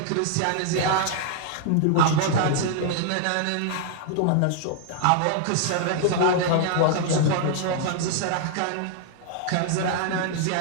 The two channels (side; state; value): both; different; correlation -0.01